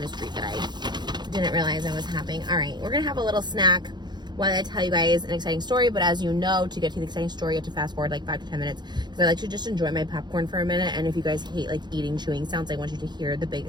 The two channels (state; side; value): late; left; 0.21 ms